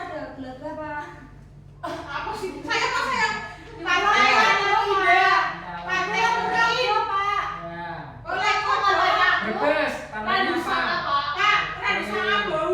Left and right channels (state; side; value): identical; both; correlation 1.00